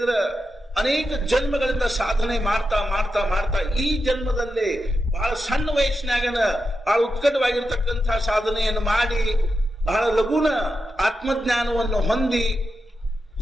ಅನೇಕ ಜನ್ಮಗಳಿಂದ ಸಾಧನೆ ಮಾಡ್ತಾ ಮಾಡ್ತಾ ಮಾಡ್ತಾ ಈ ಜನ್ಮದಲ್ಲಿ ಬಹಳ ಸಣ್ಣ ವಯಸ್ಸಿನಾಗನ ಬಹಳ ಉತ್ಕಟವಾಗಿರ್ತಕ್ಕಂಥ ಸಾಧನೆಯನ್ನು ಮಾಡಿ ಬಹಳ ಲಘುನ ಆತ್ಮಜ್ಞಾನವನ್ನು ಹೊಂದಿ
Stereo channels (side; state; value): both; normal; correlation 0.88